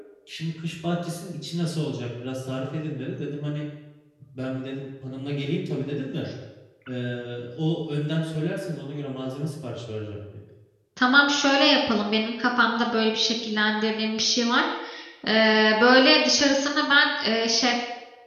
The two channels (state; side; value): identical; both; correlation 1.00